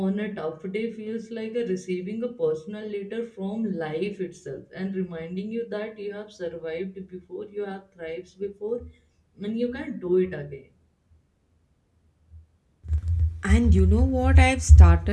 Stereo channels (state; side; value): identical; both; correlation 1.00